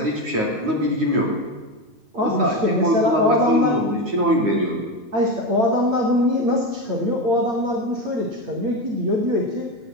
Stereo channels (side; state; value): left; late; 9.4 ms